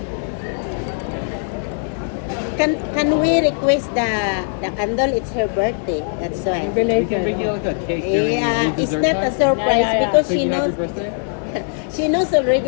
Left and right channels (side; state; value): right; silent; digital silence